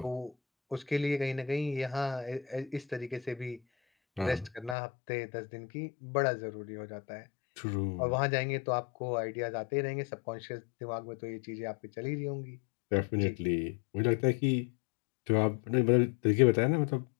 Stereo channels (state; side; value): drops out; right; at 4.8 s